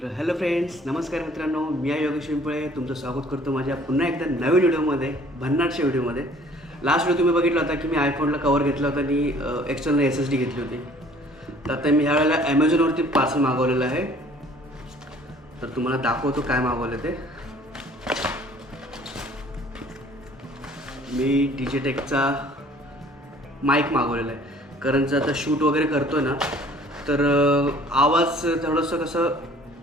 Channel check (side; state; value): both; normal; correlation 0.54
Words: हॅलो फ्रेंड्स, नमस्कार मित्रांनो. मी आहे योगेश पिंपळे. तुमचं स्वागत करतो माझ्या पुन्हा एकदा नवीन व्हिडिओमध्ये, भन्नाटच्या व्हिडिओमध्ये. लास्ट व्हिडिओ तुम्ही बघितला होता की मी आयफोनला कवर घेतला होता आणि एक्सटर्नल SSD घेतली होती. तर आता मी ह्यावेळेला ॲमेझॉनवरती पार्सल मागवलेलं आहे. तर तुम्हाला दाखवतो काय मागवलं ते. मी डिजिटेकचा माईक मागवलेला आहे. कारण जर आता शूट वगैरे करतो ना, तर आवाज थोडंसं कसं